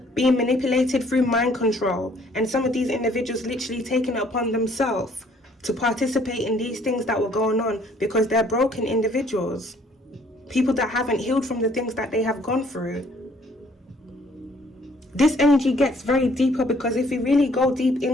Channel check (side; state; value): both; normal; correlation 0.61